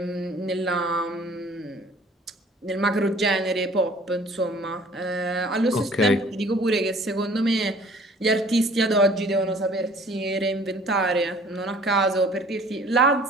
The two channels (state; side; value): normal; both; correlation 0.53